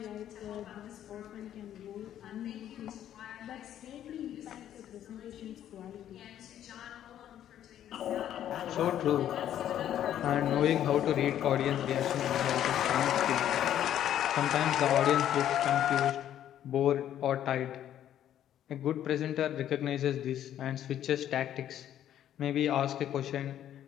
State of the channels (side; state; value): right; quieter; 11.0 dB